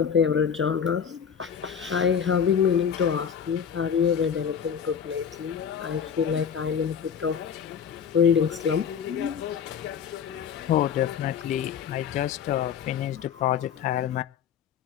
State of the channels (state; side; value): quieter; right; 7.7 dB